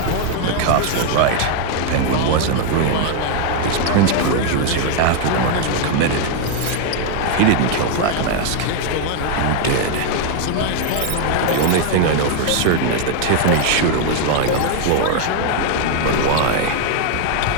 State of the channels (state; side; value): different; both; correlation 0.00